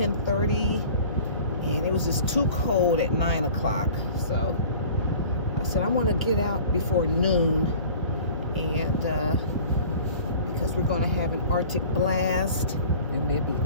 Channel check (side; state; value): both; inverted; correlation -0.44